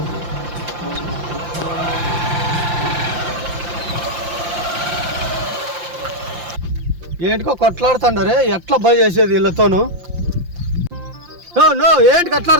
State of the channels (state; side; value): late; left; 5.7 ms